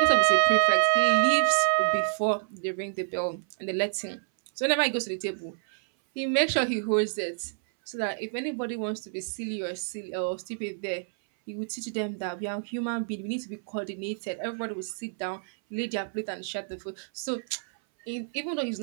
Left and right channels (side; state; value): left; silent; 59 dB below the other